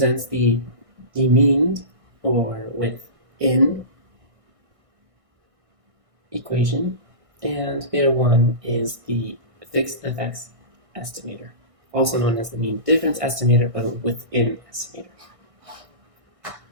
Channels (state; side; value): late; left; 1.6 ms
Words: the mean or within equation, and beta 1 is the fixed effects estimator, also known as the mean difference estimator, but within estimator.